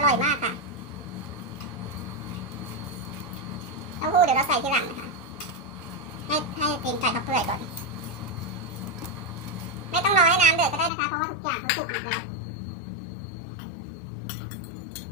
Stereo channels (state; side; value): drops out; right; at 10.9 s